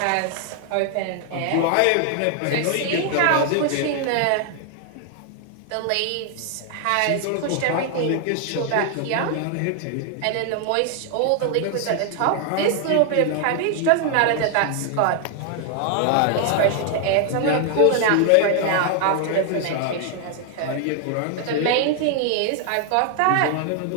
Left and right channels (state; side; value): different; both; correlation 0.00